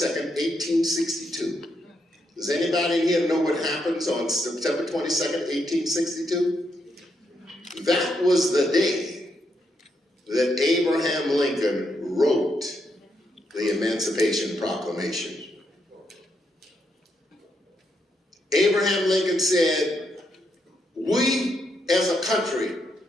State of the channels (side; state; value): both; normal; correlation 0.79